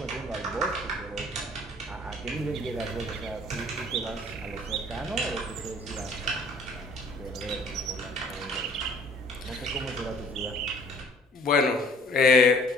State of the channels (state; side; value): normal; both; correlation 0.56